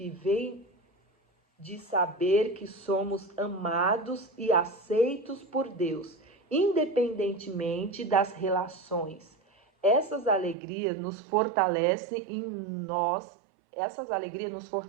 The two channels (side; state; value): left; drops out; at 10.6 s